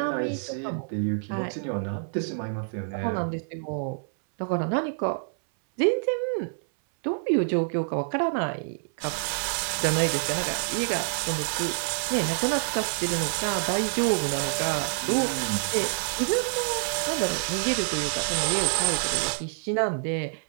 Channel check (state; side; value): silent; left; 60 dB below the other